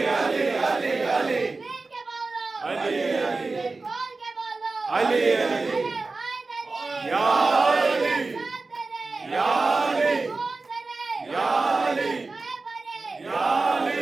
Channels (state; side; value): quieter; left; 3.7 dB